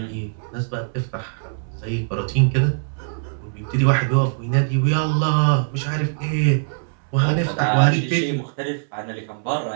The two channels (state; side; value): silent; left; 64 dB below the other